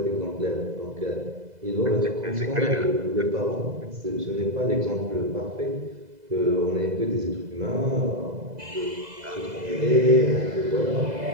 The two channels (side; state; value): left; late; 2.0 ms